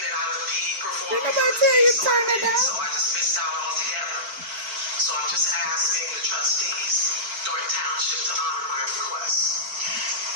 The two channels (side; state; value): left; late; 4.5 ms